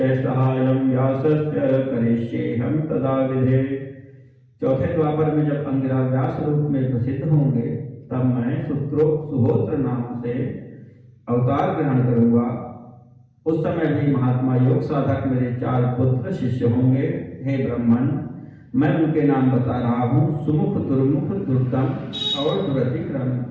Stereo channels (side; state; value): both; identical; correlation 1.00